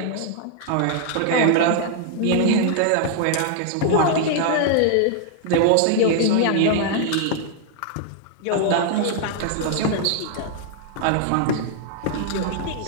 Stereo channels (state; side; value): different; both; correlation 0.00